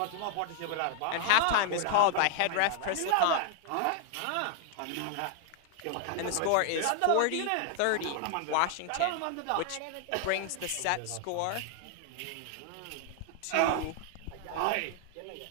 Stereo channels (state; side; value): different; both; correlation 0.00